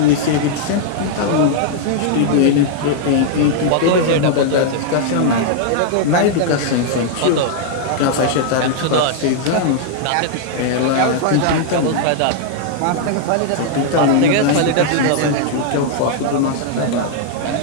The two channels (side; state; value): both; different; correlation -0.01